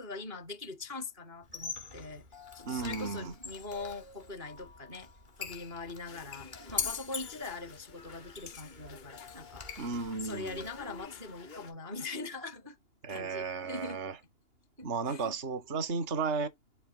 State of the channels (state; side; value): late; left; 2.8 ms